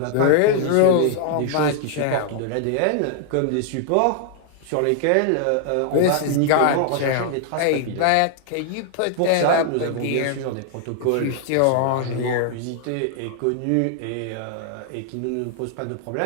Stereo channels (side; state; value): both; different; correlation -0.01